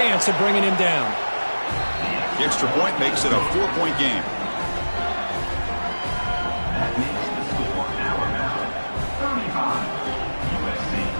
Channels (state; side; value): inverted; both; correlation -1.00